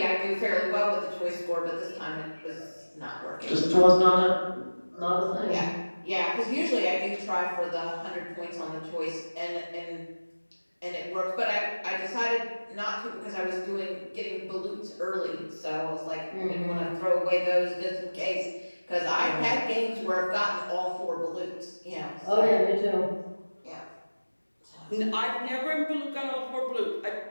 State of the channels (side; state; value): both; inverted; correlation -1.00